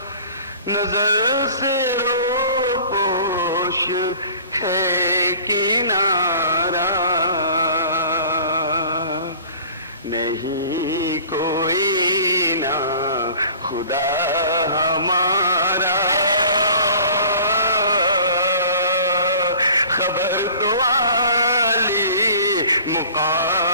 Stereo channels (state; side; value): inverted; both; correlation -0.46